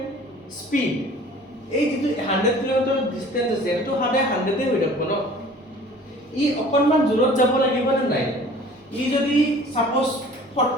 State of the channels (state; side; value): normal; both; correlation 0.48